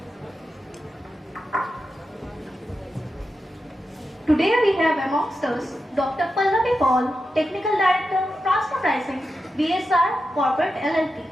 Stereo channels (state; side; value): normal; both; correlation 0.89